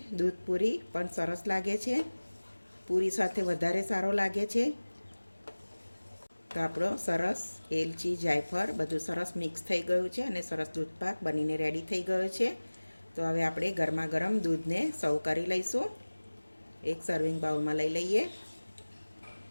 દૂધપૂરી પણ સરસ લાગે છે, પૂરી સાથે વધારે સારો લાગે છે। તો આપણો સરસ એલચી જાયફળ બધું સરસ મિક્સ થઈ ગયું છે અને સરસ દૂધપાક બનીને રેડી થઈ ગયો છે. તો હવે આપણે ગરમા ગરમ દૂધને સર્વ કરી લઈશું. એક સર્વિંગ બાઉલમાં લઈ લઈએ.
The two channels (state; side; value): inverted; both; correlation -1.00